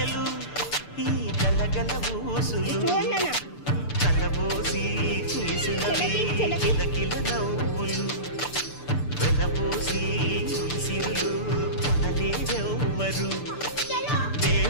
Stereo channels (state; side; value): late; right; 6.8 ms